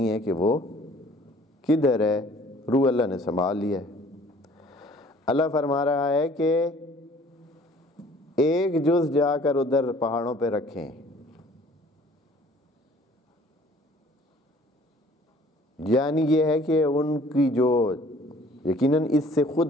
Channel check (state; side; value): normal; both; correlation 0.54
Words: ہے کہ وہ کدھر ہے، روح اللہ نے سنبھال لیا ہے۔ اللہ فرما رہا ہے کہ ایک جز جا کر ادھر پہاڑوں پہ رکھیں، یعنی یہ ہے کہ ان کی جو یقیناً اس سے